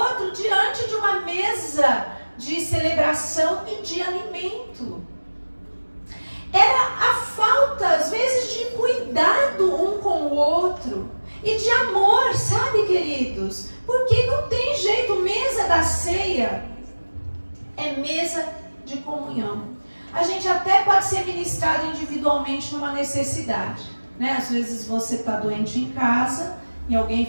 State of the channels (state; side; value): inverted; both; correlation -1.00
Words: diante de uma mesa de celebração e de alimento. Era a outro. E de amor, sabe, queridos? Porque não tem jeito, mesa da ceia é mesa de comunhão. A gente até pode ser ministrado individualmente numa necessidade, né? Às vezes você está doente em casa e alguém